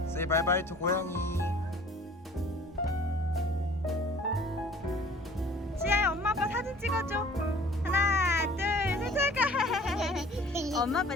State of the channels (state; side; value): normal; both; correlation 0.49